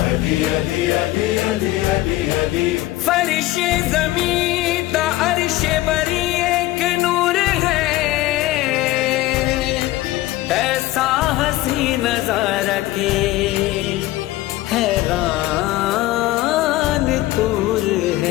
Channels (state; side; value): quieter; right; 16.8 dB